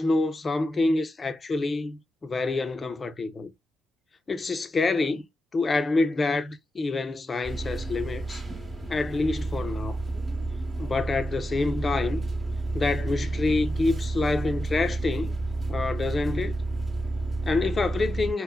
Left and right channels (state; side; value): normal; both; correlation 0.89